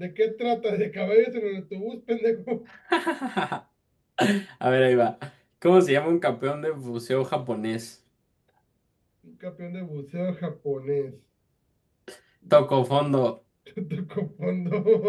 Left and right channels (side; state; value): both; identical; correlation 1.00